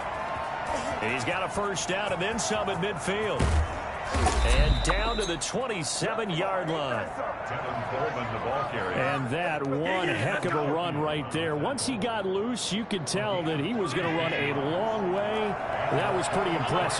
And he's got a first down and then some at midfield. And down to the 27-yard line. And that one heck of a run right there. Once he got loose, you could tell that he was going to run a long way. That was pretty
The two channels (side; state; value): both; identical; correlation 1.00